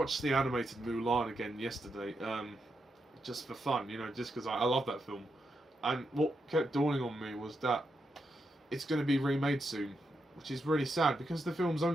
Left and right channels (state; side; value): normal; both; correlation 0.84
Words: the animated Mulan again yesterday, just for fun, you know, just because I love that film. And what kept dawning on me was that it's going to be remade soon, which is really sad because the film's